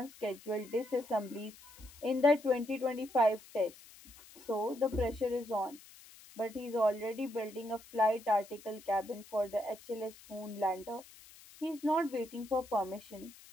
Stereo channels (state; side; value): noise; left; hiss, 21 dB below the sound